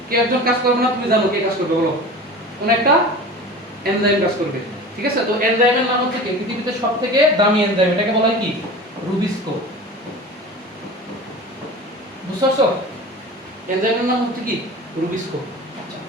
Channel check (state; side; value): normal; both; correlation 0.36